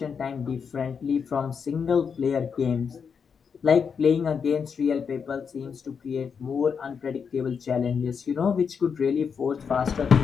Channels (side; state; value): right; quieter; 6.4 dB